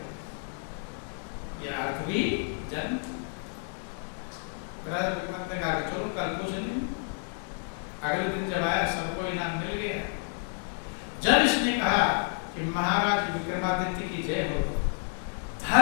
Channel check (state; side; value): silent; right; 58 dB below the other